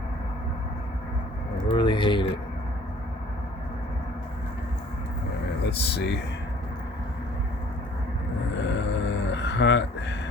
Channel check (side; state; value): both; normal; correlation 0.54